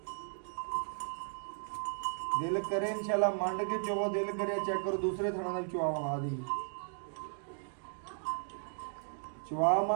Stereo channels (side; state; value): left; silent; digital silence